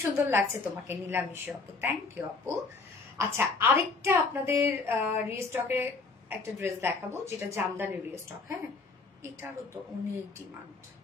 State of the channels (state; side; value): quieter; right; 4.1 dB